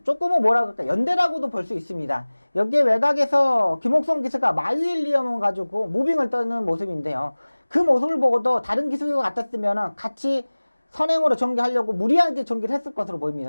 조금은 뭐라 그럴까, 연대라고도 볼 수 있습니다. 여기에 외곽에서 김옥성 기수가 마유일리엄을 가지고 무빙을 떠는 모습인데요. 그 모습을 보고도 다른 기수가 같았으면 같이 선행으로 전개하려고 무리하게 전개를 했을 것으로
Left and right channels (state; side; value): inverted; both; correlation -1.00